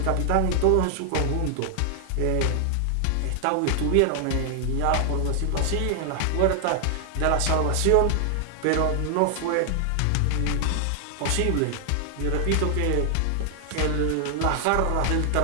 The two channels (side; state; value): both; different; correlation 0.00